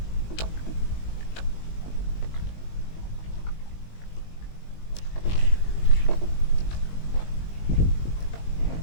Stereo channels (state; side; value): late; right; 20 ms